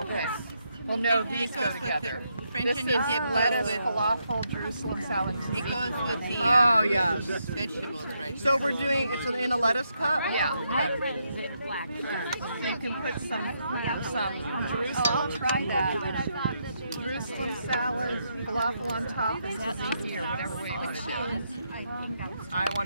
this. Well, no, these go together. French onion This is dip lettuce, with, falafel, Jerusalem salad. it goes with the Oh, yes. vegetables, right? So we're doing, it's in a lettuce cup? Yeah. Okay. So you can put some Jerusalem. I'll try that. Jerusalem salad, falafel on top, is that easier, whatever way you want to do it. I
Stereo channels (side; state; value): both; inverted; correlation -0.79